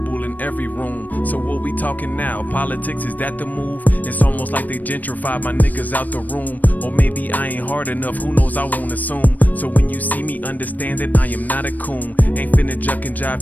in every room. So what we talking now? Politics, is that the move? It's almost like they gentrified my niggas out the room. Or maybe I ain't hard enough, who knows, I won't assume. So when you see me, understand that I am not a coon. Ain't finna juck and jive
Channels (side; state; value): right; late; 0.083 ms